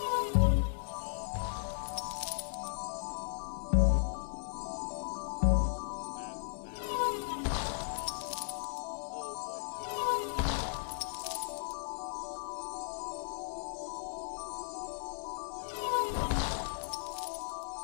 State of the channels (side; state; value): right; silent; 54 dB below the other